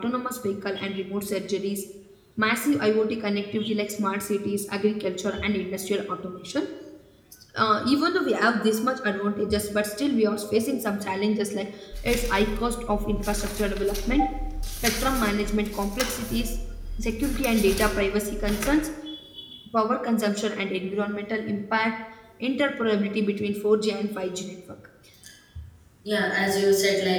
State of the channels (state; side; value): identical; both; correlation 1.00